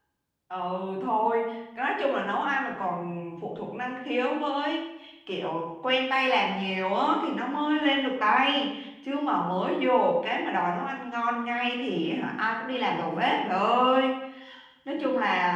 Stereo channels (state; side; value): identical; both; correlation 1.00